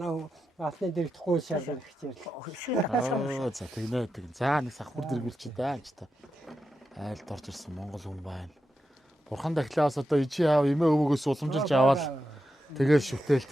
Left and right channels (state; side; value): normal; both; correlation 0.88